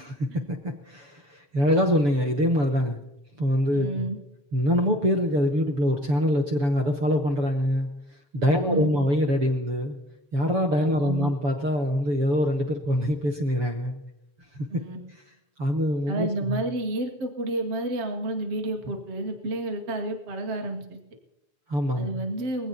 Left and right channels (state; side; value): late; left; 7.0 ms